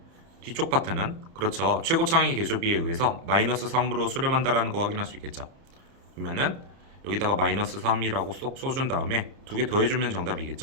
뒤쪽 파트는, 그렇죠, 최고차항의 개수비에 의해서 마이너스 3으로 수렴한다라는 거 확인할 수 있겠죠. 그러면은 여기다가 마이너스 3이라고 쏙 써준 다음에 두 개 더해주면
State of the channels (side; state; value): left; late; 30 ms